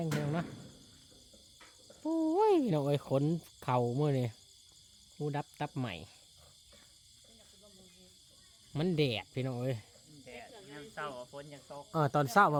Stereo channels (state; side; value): identical; both; correlation 1.00